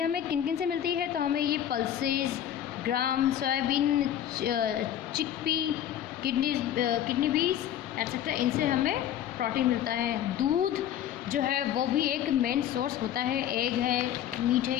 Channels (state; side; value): quieter; right; 10.9 dB